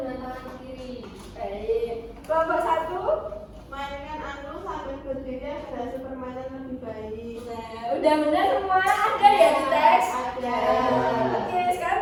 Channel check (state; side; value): identical; both; correlation 1.00